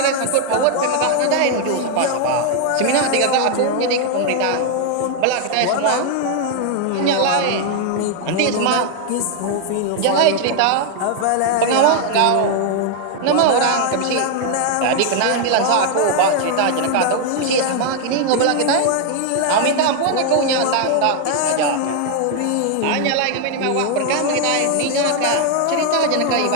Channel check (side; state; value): both; different; correlation 0.00